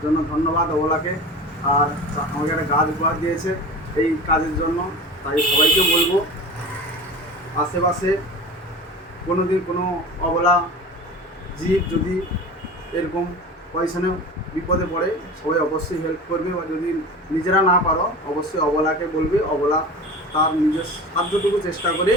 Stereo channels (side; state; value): both; normal; correlation 0.34